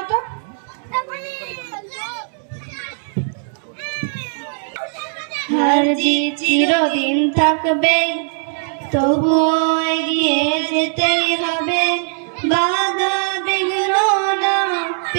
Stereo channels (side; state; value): left; silent; 66 dB below the other